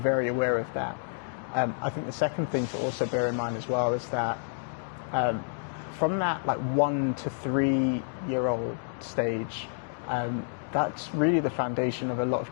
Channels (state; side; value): silent; right; digital silence